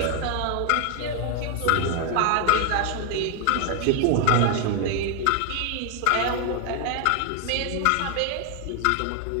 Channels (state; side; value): different; both; correlation 0.01